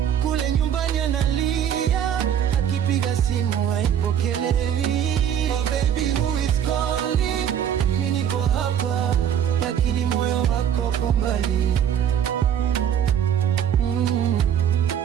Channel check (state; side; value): quieter; left; 9.3 dB